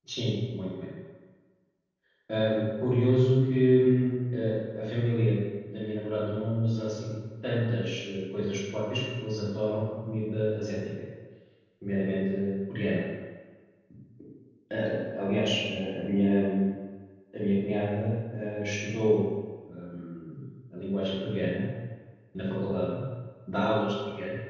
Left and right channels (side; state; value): both; identical; correlation 1.00